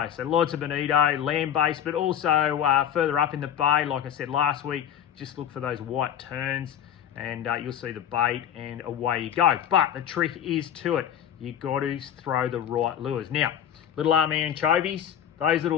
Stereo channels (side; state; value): right; quieter; 9.6 dB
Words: So lots of bonito, land-based, but also further up in the bay, like I said last week, just look for those white terns and you'll see the bait and away you go. But the trick is to it. You got to throw the right lures. Now, little army anchovies, those little